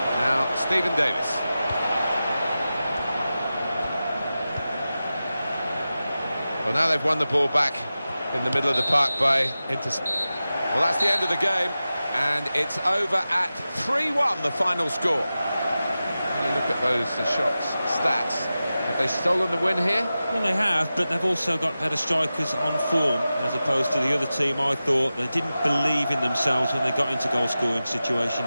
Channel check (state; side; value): inverted; both; correlation -0.94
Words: Now Stephen Davis. Well, now they've won the ball back in the middle of the park by Well, that's the end of the game, and it's over at 3-1, the final score. When you look at those shots, stats, have they stolen the win here? Well, they have, but they've also got better strikers on form, as opposed to the other team. I thought they didn't believe in themselves when they got into goal-scoring